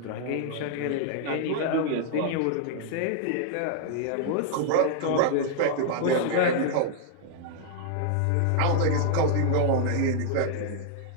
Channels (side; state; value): both; different; correlation -0.01